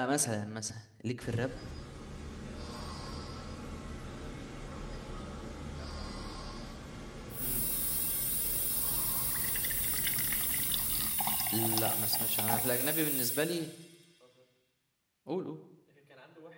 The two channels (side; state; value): both; identical; correlation 1.00